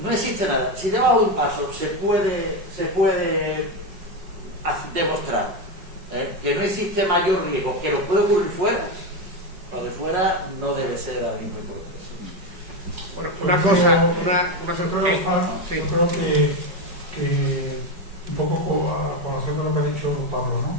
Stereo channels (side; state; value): left; late; 5.2 ms